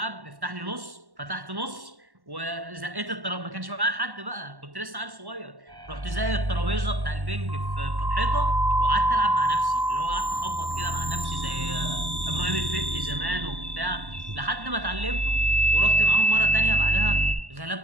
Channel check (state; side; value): late; left; 1.1 ms